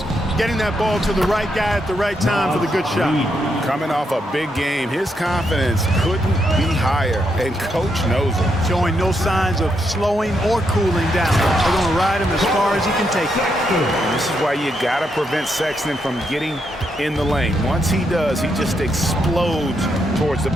getting that ball to the right guy at the right time for the good shot. Coming off a big game, his confidence couldn't be higher, and Coach knows it. Showing no signs of slowing or cooling down. They're going to ride him as far as he can take it. And this is why you got to prevent Sexton from getting in the lane. Once he does, he just explodes towards the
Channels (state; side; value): normal; both; correlation 0.80